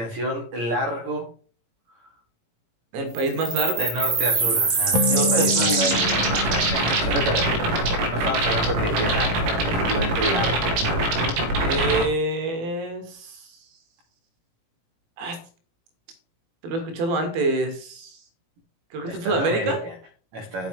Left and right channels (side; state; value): left; late; 18 ms